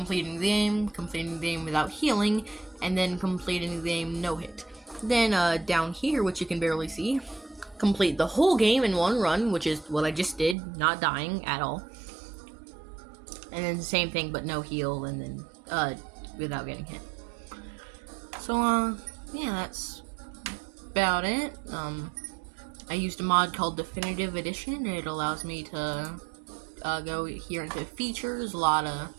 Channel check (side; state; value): left; drops out; at 10.6 s